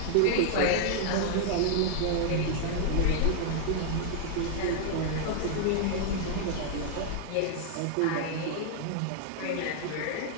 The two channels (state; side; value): different; both; correlation 0.00